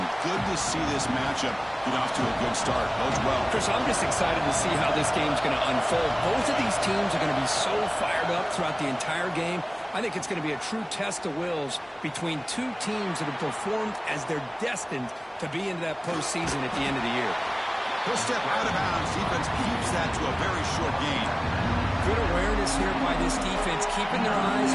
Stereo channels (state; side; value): identical; both; correlation 1.00